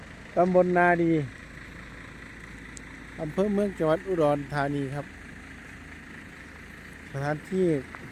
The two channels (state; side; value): identical; both; correlation 1.00